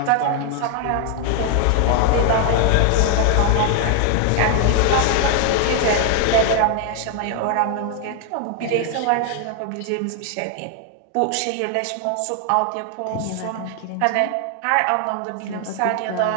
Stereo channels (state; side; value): different; both; correlation 0.00